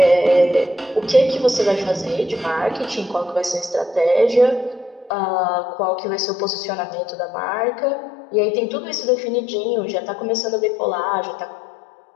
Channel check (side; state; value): right; drops out; at 5.1 s